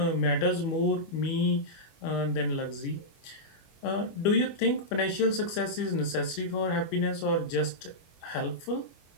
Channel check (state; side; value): late; right; 25 ms